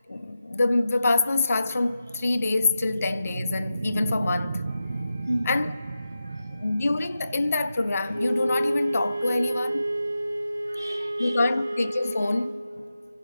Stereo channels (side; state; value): both; inverted; correlation -0.90